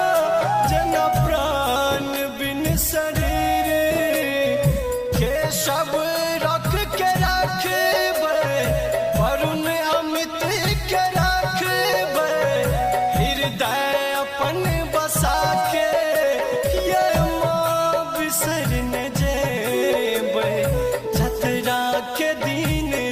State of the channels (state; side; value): identical; both; correlation 1.00